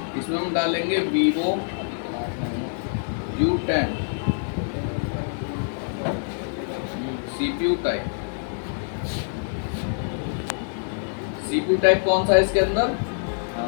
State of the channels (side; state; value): right; silent; 62 dB below the other